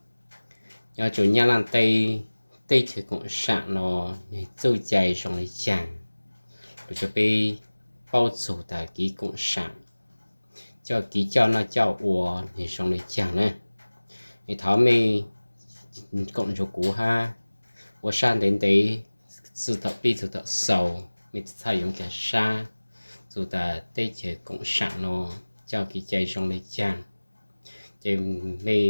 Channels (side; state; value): both; inverted; correlation -1.00